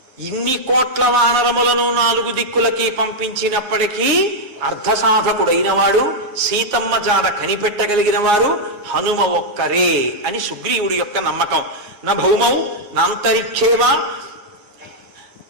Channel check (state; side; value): late; left; 9.6 ms